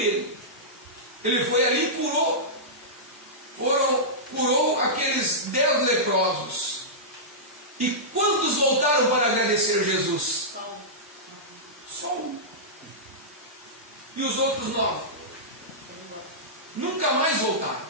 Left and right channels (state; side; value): normal; both; correlation -0.14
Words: Ele foi ali e curou aqueles 10 leprosos. E quantos voltaram para agradecer Jesus? Só um. E os outros 9? Nunca mais voltaram.